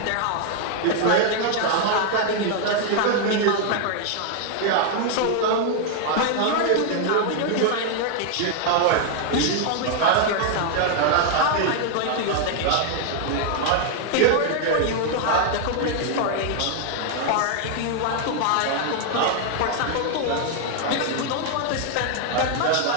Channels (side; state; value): both; different; correlation 0.00